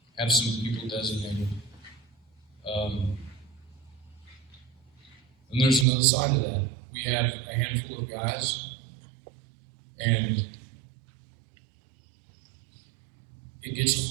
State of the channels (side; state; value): left; drops out; at 5.9 s